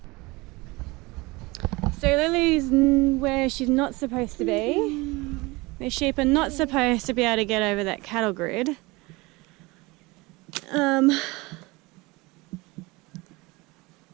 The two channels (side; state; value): left; quieter; 23.5 dB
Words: So Lily's where she's not supposed to be. The sheep are not supposed to be able to get over that cattle grid.